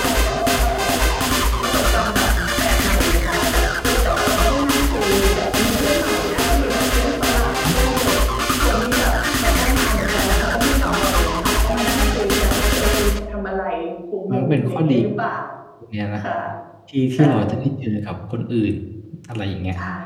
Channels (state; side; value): identical; both; correlation 1.00